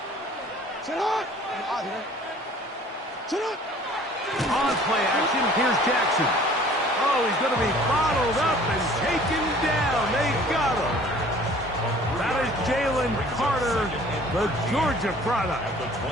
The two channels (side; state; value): both; normal; correlation 0.51